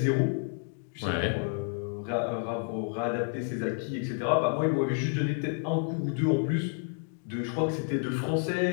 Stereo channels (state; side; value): silent; right; 58 dB below the other